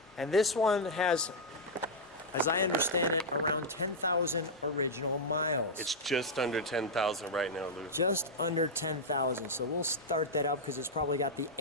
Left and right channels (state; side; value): normal; both; correlation -0.03